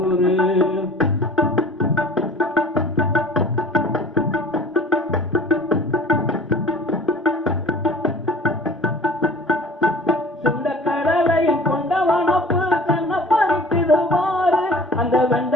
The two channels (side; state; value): both; normal; correlation 0.45